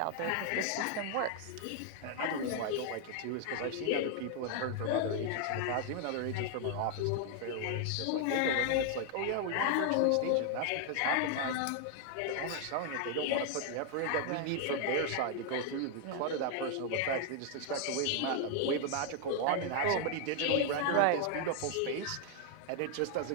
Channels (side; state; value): both; different; correlation 0.00